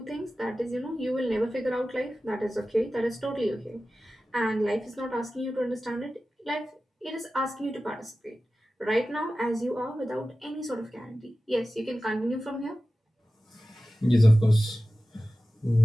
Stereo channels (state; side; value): normal; both; correlation 0.95